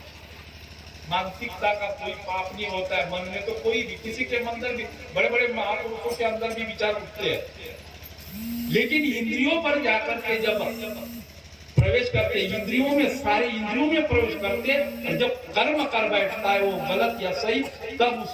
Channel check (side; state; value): both; identical; correlation 1.00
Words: मानसिकता का कोई पाप नहीं होता है, मन में तो कोई भी, किसी के अंदर भी, बड़े बड़े महापुरुषों के अंदर भी विचार उठते हैं, लेकिन इंद्रियों पर जाकर के जब प्रवेश करते, इंद्रियों में, सारे इंद्रियों में प्रवेश करते, और जब कर्म कर बैठता है वो गलत या सही, तब